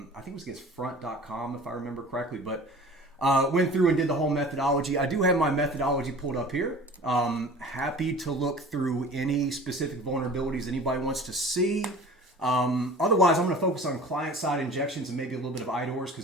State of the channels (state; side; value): normal; both; correlation 0.42